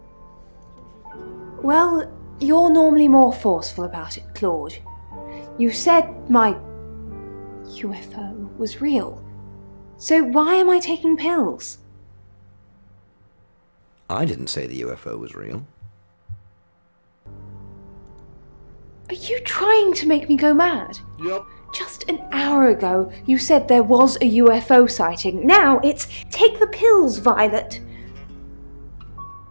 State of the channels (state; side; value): inverted; both; correlation -1.00